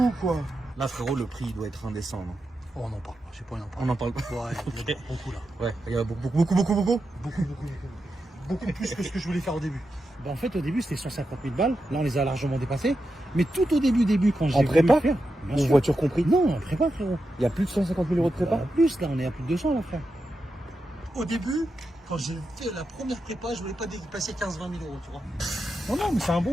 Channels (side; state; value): both; normal; correlation 0.88